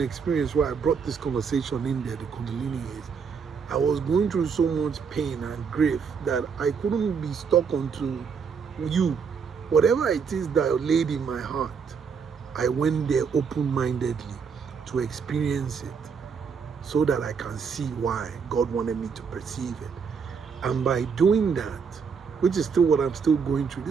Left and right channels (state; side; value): quieter; left; 6.0 dB